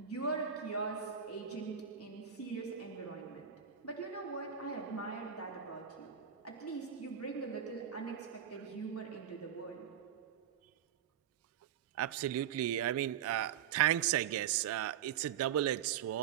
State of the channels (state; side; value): quieter; left; 9.0 dB